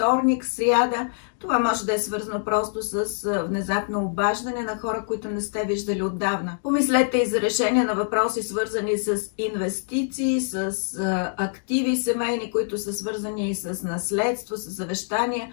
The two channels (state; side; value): silent; right; digital silence